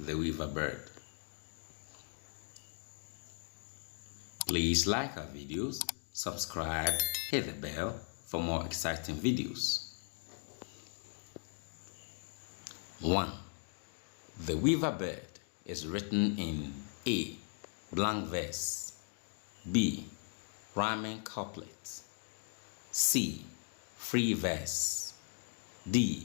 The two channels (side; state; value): right; silent; 52 dB below the other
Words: Weaver Bird. Please like our videos, subscribe, hit the bell for more exciting videos. 1. The Weaver Bird is written in A. Blank verse, B. Rhyming couplet, C. Free verse,